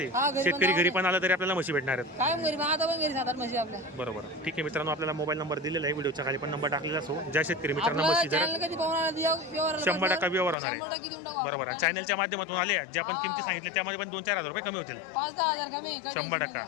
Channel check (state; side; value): drops out; right; at 10.6 s